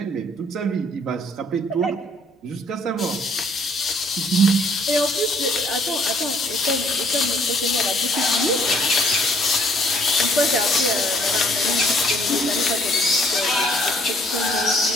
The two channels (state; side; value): normal; both; correlation 0.62